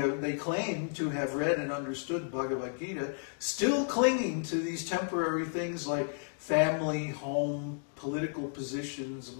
claim to have read and understood Bhagavad-gītā, still clinging to these temporary things like family, home, political positions,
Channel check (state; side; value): silent; right; digital silence